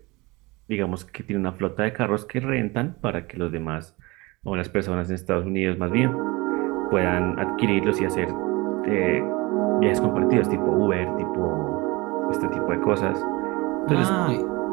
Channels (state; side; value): quieter; left; 24.0 dB